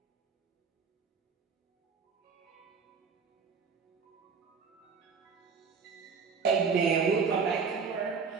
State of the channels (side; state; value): left; quieter; 5.6 dB